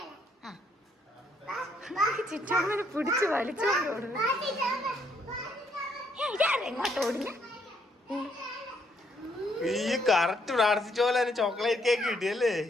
ചിറ്റാമ്മനെ പിടിച്ച് വലിച്ചോണ്ട് ഓടുന്നു. എങ്ങോട്ട് ഓടിഞ്ഞ? ഈ കറക്റ്റ് പ്രാർത്ഥിച്ച പോലെ തന്നെ ചോക്ലേറ്റ് കേക്ക് കിട്ടിയല്ലേ?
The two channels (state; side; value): normal; both; correlation 0.71